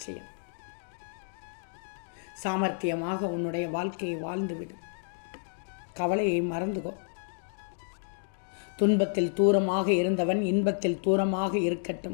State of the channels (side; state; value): right; silent; digital silence